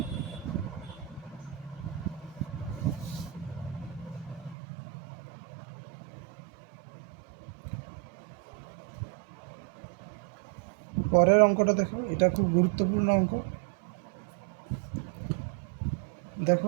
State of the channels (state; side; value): drops out; left; at 4.5 s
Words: পরের অঙ্কটা দেখো, এটা খুব গুরুত্বপূর্ণ অঙ্ক।